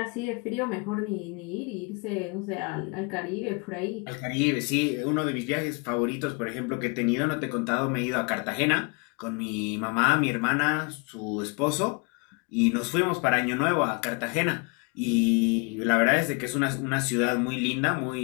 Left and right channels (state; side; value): quieter; right; 32.6 dB